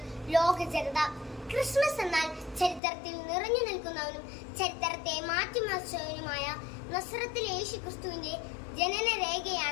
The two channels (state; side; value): drops out; right; at 2.8 s